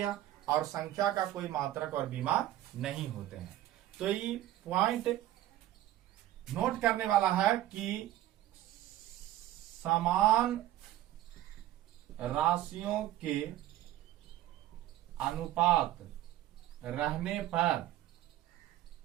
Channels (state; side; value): quieter; left; 13.9 dB